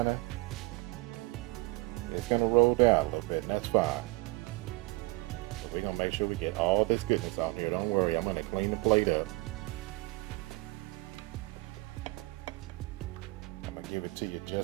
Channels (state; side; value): quieter; left; 23.2 dB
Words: roll down a little bit, and that's fine. We're gonna make sure we get all this goodness out here. Don't worry, I'm gonna clean the plate up. I'm gonna give it to you